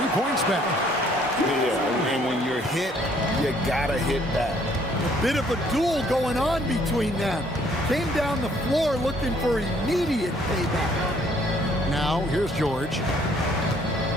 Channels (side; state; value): both; normal; correlation 0.63